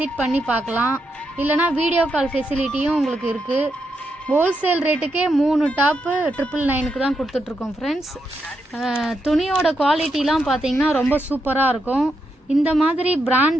பண்ணி பார்க்கலாம், இல்லைனா வீடியோ கால் ஃபெசிலிட்டியும் உங்களுக்கு இருக்குது. ஹோல்சேல் ரேட்டுக்கே 3 டாப்பு 999க்கு தான் கொடுத்துட்ருக்கோம் ஃப்ரெண்ட்ஸ். துணியோட குவாலிட்டிலாம் பார்த்தீங்கன்னா ரொம்ப சூப்பராக இருக்கும். இந்த மாதிரி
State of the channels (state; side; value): normal; both; correlation 0.83